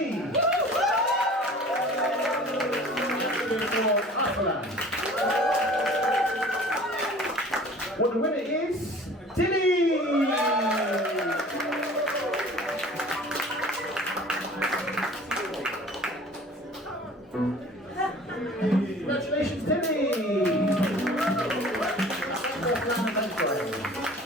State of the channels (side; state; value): both; normal; correlation 0.46